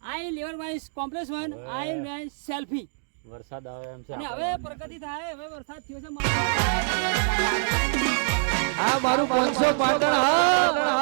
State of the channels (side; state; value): left; silent; digital silence